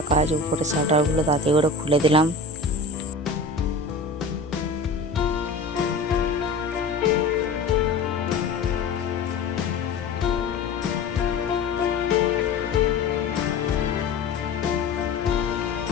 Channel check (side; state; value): right; quieter; 3.8 dB